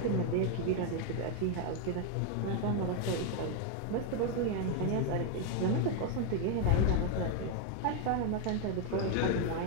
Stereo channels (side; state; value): both; different; correlation 0.01